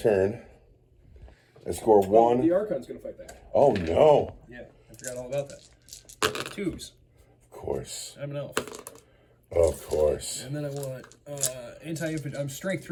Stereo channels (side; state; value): both; identical; correlation 1.00